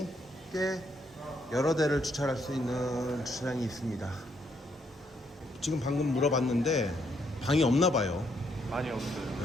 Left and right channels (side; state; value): both; normal; correlation 0.74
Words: 꽤 여러 대를 주차할 수 있는 주차장이 있습니다. 지금 방금 물어봤는데 방이 없나 봐요. 많이 없어요.